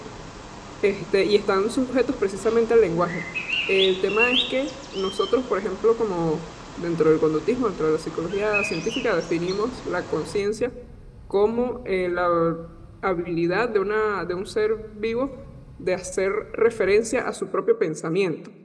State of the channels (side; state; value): both; identical; correlation 1.00